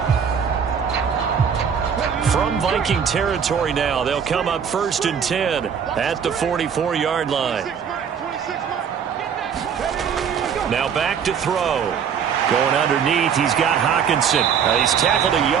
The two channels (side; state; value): left; quieter; 7.4 dB